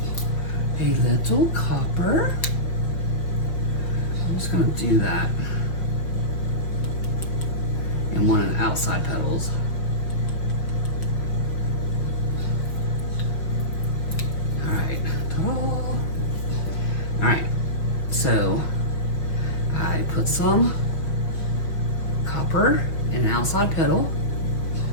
a little copper. I'm just gonna do that. And one of the outside petals. All right, all right, so I put some copper in the outside petal.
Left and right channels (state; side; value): late; right; 5.6 ms